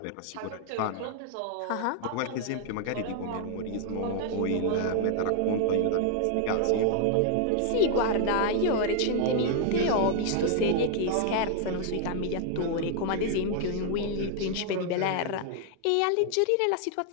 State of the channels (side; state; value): both; different; correlation 0.00